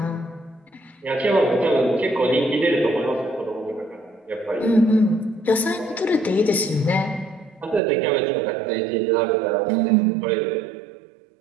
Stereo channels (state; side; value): drops out; left; at 7.8 s